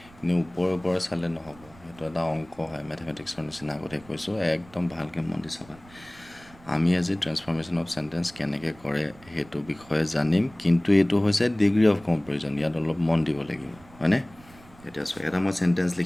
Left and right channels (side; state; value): right; noise; rumble, 24 dB below the sound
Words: এনেই ওপৰে চালে নহ'ব, সেইটো এটা অংক হয়, মেথমেটিক্সৰ নিচিনা। আগতে কৈছোঁ, একদম ভালকৈ মন দি চাবা। আমি আজি ট্ৰেন্সফৰ্মেশ্যন অফ চেণ্টেন্স কেনেকৈ কৰে সেইটো বিষয়ে জানিম, কিন্তু এইটো হৈছে ডিগ্ৰী অফ কম্পেৰিজন, ইয়াত অলপ মন দিব লাগিব, হয়নে? এতিয়া চোৱা, এটা মই চেণ্টেন্স